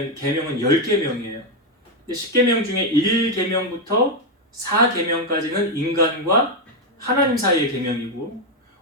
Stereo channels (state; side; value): normal; both; correlation 0.04